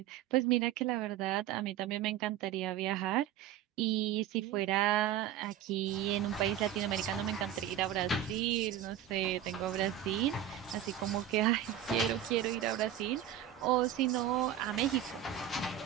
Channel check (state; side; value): quieter; left; 10.8 dB